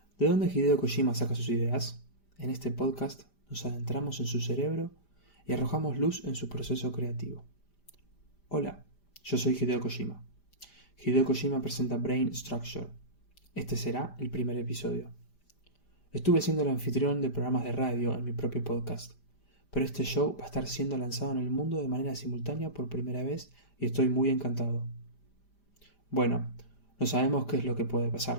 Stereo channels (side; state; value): right; late; 5.0 ms